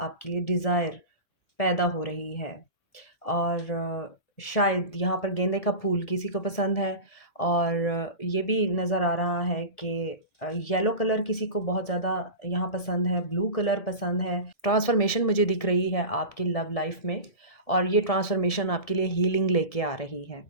लिए डिज़ायर पैदा हो रही है। और शायद यहाँ पर गेंदे का फूल किसी को पसंद है। और ये भी नज़र आ रहा है कि येलो कलर किसी को बहुत ज़्यादा यहाँ पसंद है, ब्लू कलर पसंद है। ट्रांसफॉर्मेशन मुझे दिख रही है आपकी लव लाइफ में, और ये ट्रांसफॉर्मेशन आपके लिए हीलिंग लेके आ रही है,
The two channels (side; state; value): right; late; 1.7 ms